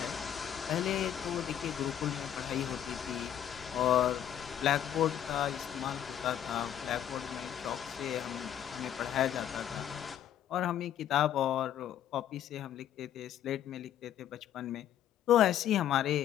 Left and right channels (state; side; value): quieter; right; 10.4 dB